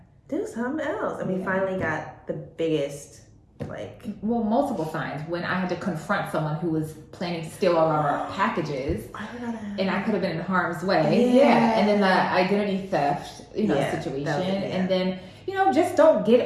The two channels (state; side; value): identical; both; correlation 1.00